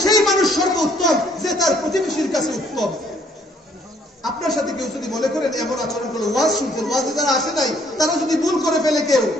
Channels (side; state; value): both; normal; correlation 0.64